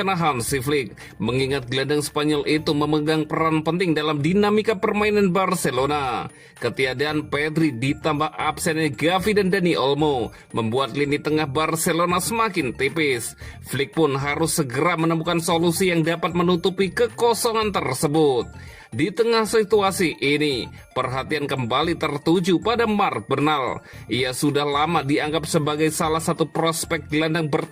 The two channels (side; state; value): both; identical; correlation 1.00